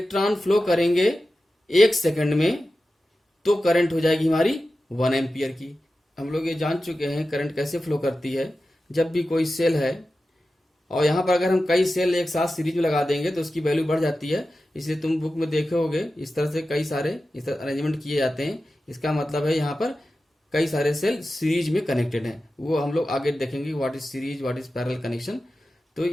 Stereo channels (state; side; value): normal; both; correlation 0.93